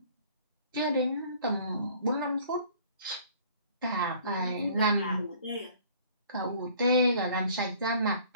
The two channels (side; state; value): both; inverted; correlation -0.54